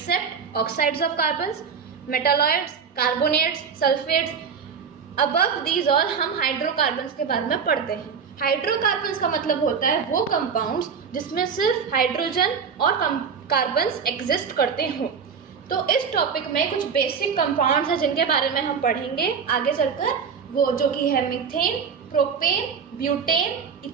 oxides of carbons, metalloids, carbonates, sulphates. Above these all हम हाइड्रोकार्बन्स के बारे में पढ़ते हैं। हाइड्रोकार्बन्स का मतलब होता है वो कंपाउंड्स जिसमें सिर्फ हाइड्रोजन और कार्बन्स एग्जिस्ट करते हों। तो इस टॉपिक में कुछ बेसिक कंपाउंड्स हैं जिनके बारे में हम पढ़ेंगे आगे चलकर, वो जो कि है methane, propane, butane,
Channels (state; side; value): quieter; left; 6.3 dB